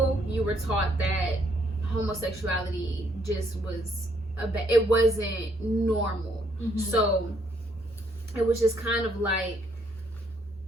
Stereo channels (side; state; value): both; normal; correlation 0.70